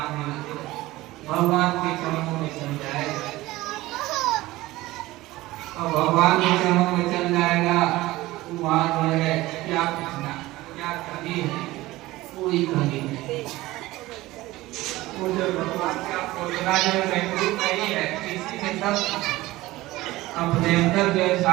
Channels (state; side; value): quieter; left; 18.2 dB